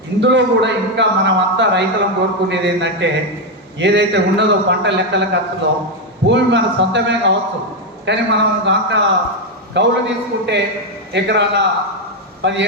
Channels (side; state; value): both; normal; correlation 0.05